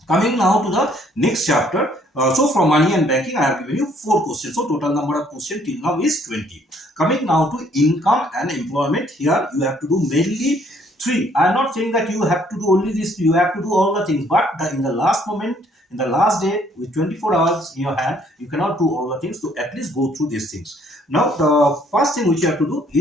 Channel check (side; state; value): both; normal; correlation 0.64